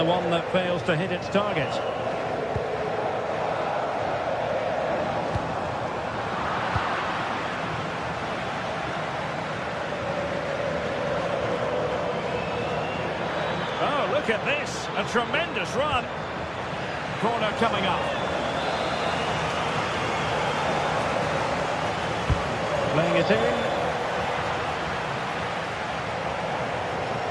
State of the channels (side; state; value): both; identical; correlation 1.00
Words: one that fails to hit its target. Oh, look at this. A tremendous run. Corner coming up. Playing it in.